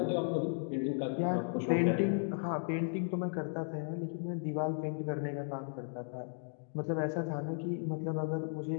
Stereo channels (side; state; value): right; silent; digital silence